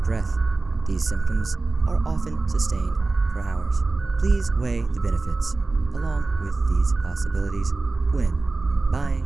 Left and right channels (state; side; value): quieter; left; 3.5 dB